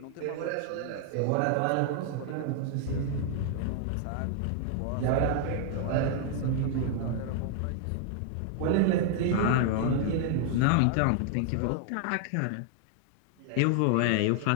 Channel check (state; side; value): different; both; correlation 0.00